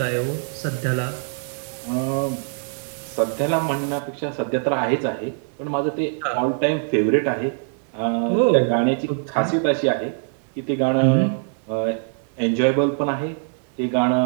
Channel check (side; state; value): left; silent; 64 dB below the other